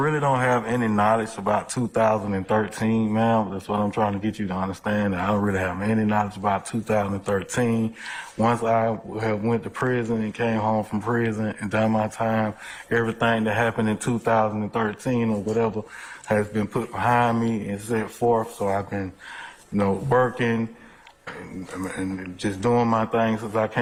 don't have any knowledge about 2013, ma'am. That's what I'm trying to get you to understand. That I don't really have any knowledge about 2013. Once I have went to prison and came home from prison and done my time, everything that happened in 2013 or whatever has been put behind me and set forth. So I've been, working and just doing my thing since I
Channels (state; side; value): identical; both; correlation 1.00